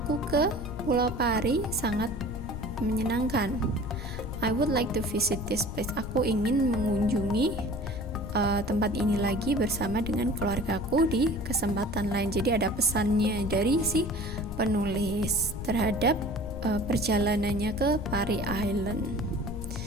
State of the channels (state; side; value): noise; left; rumble, 8 dB below the sound